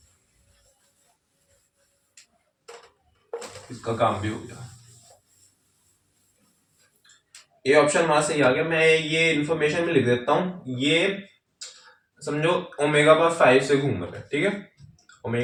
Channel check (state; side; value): identical; both; correlation 1.00